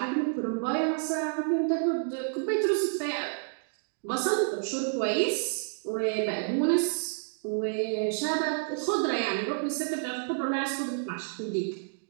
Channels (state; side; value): silent; left; digital silence